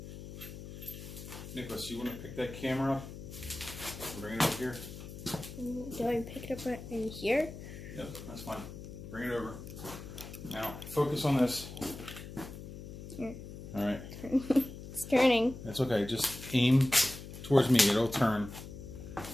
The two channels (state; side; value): noise; left; hum, 12 dB below the sound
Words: Nicholas, you want to pick that camera up and bring it over here? Do I pick it up right in here? Yep, that's fine. Bring it over. Now, focus on this. Here. All right. It's turning. That's okay. Just aim towards me. It'll turn. All